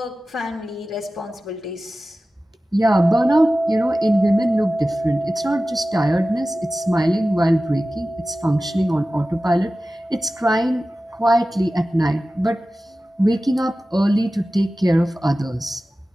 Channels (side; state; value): both; normal; correlation 0.95